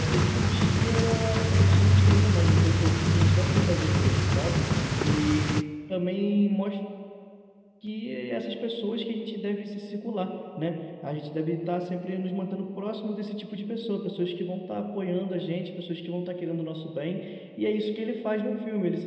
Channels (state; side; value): identical; both; correlation 1.00